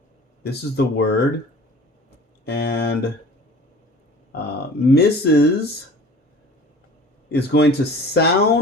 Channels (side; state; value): both; normal; correlation 0.44